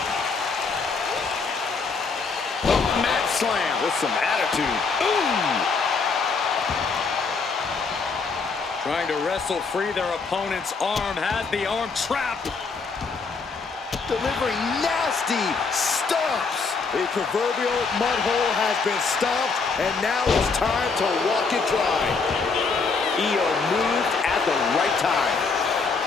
Slam with some attitude. Ooh! Trying to wrestle free their opponent's arm, has the arm trapped. Delivering nasty stomps. A proverbial mud hole has been stomped, and now it's time to walk it dry. Io moved at the right time.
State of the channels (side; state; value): right; quieter; 4.7 dB